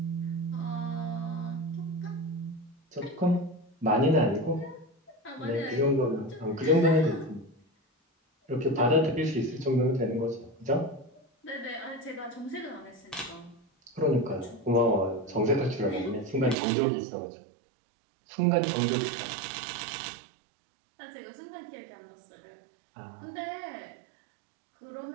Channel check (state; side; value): drops out; left; at 16.6 s